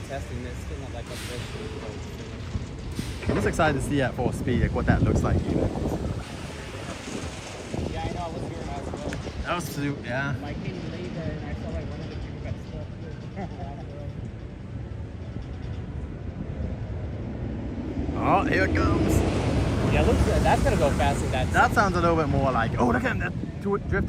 testing this. Still not like a I'm just excited to see at full speed like what that looks like even. Yeah, I know. I was here as well. That was super, yeah. I came later and I saw like one of the people got stuck here. Oh, here it comes. Yeah, looks that's gonna go fast in that. That sounds a little bit more like, oh, look at him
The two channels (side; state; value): both; identical; correlation 1.00